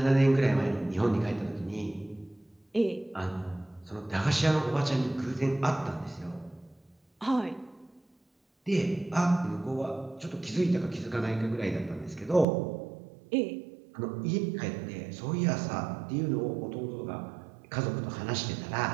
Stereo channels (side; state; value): left; drops out; at 12.5 s